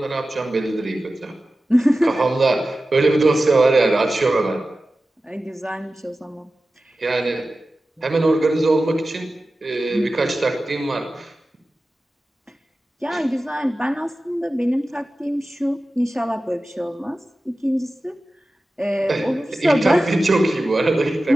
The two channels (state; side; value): normal; both; correlation 0.95